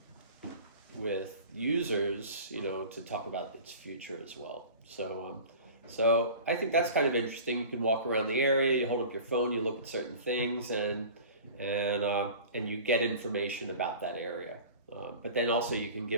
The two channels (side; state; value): both; inverted; correlation -0.40